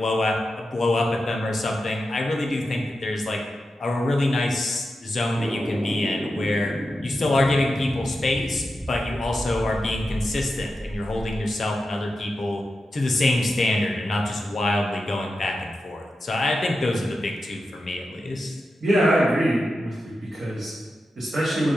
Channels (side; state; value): both; normal; correlation 0.90